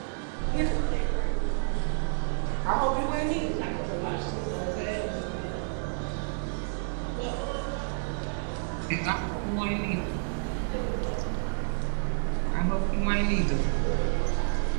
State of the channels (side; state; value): left; silent; digital silence